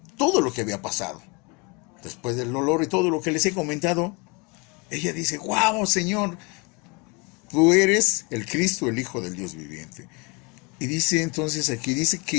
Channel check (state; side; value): quieter; right; 29.5 dB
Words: todo lo que había pasado. Después del dolor y todo lo que les he comentado, ella dice, wow, Señor, tú eres el Cristo, el Hijo del Dios viviente. Y dice entonces aquí, dice que